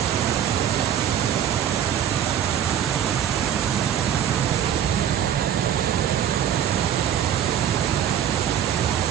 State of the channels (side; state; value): left; quieter; 9.6 dB